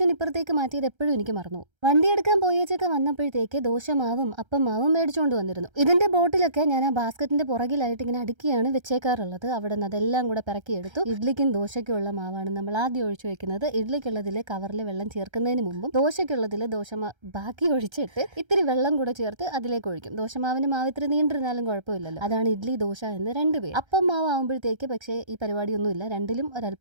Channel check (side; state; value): left; late; 1.3 ms